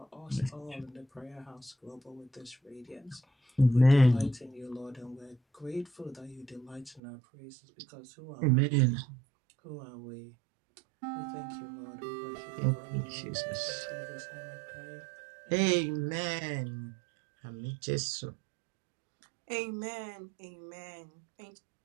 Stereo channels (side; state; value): left; drops out; at 7.0 s